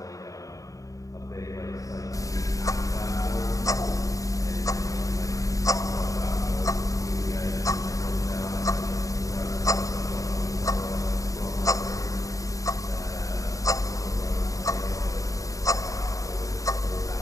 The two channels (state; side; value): late; right; 0.16 ms